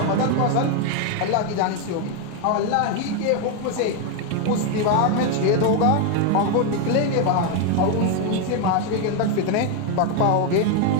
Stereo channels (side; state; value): both; different; correlation 0.01